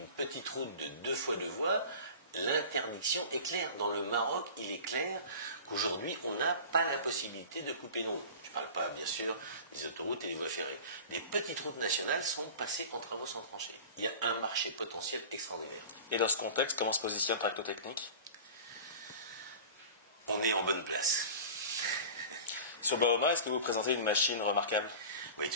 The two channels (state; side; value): inverted; both; correlation -0.37